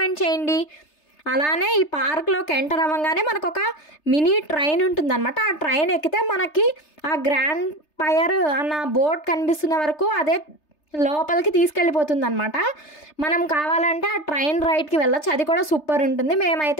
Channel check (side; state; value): right; late; 3.3 ms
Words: చేయండి. అలానే ఈ పార్క్లోకి ఎంటర్ అవ్వగానే మనకు ఒక మినీ ట్రైన్ ఉంటుందన్నమాట. ఆ ట్రైన్ ఎక్కితే మనకి ఆ గ్రాండ్ ఫైర్ అన్న బోర్డ్ కనిపిస్తున్న వరకు అదే లోపలికి తీసుకెళ్ళిపోతుంది అనమాట. మనం కావాలంటే ఆ ట్రైన్ రైడ్కి వెళ్ళొచ్చు. అది కూడా సూపర్ ఉంటుంది.